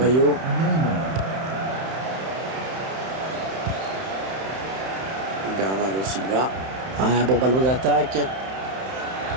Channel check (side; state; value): left; late; 31 ms